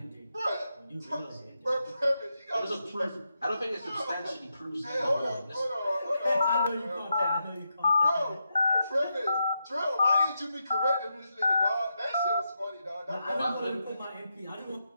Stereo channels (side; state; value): both; inverted; correlation -0.85